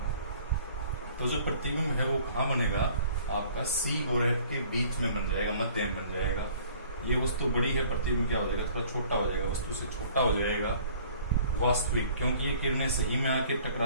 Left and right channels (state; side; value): inverted; both; correlation -0.53